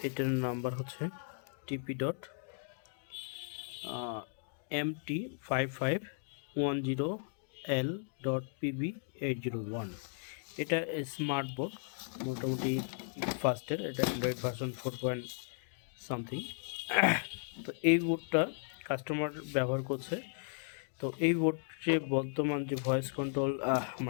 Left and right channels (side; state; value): right; silent; digital silence